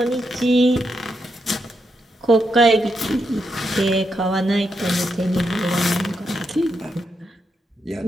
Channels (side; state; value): both; normal; correlation 0.83